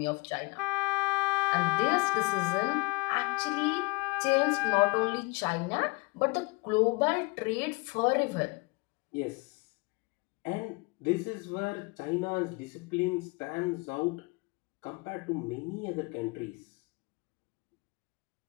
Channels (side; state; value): right; quieter; 26.9 dB